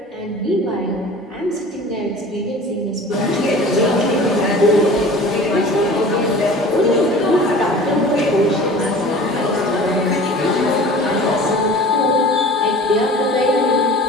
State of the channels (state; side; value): normal; both; correlation 0.42